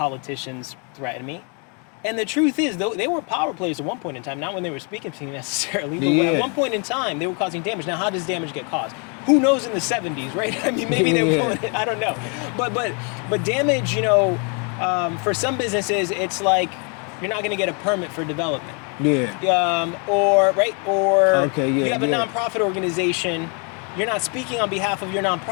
threaten me. And the truth is, though, they were power players at one point in time, not when they were speaking to me necessarily, but at one point in time, they were causing damage. Now, how does damage get caused? Who knows in the 70s, right? I mean, maybe they were pulling it, I don't know. But damage, you know, for some businesses, it's like you're not going to get a permit for development. Yeah. Or you have a nonprofit organization, you're not speaking on behalf of your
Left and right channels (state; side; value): quieter; right; 36.4 dB